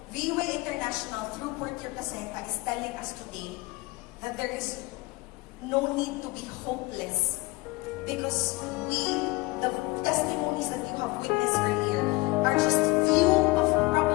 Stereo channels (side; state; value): right; quieter; 22.9 dB